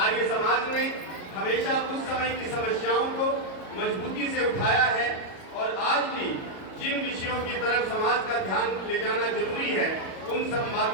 समाज ने हमेशा उस समय की समस्याओं को मजबूती से उठाया है और आज भी जिन विषयों की तरफ समाज का ध्यान ले जाना जरूरी है, उन सब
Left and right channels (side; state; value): right; late; 37 ms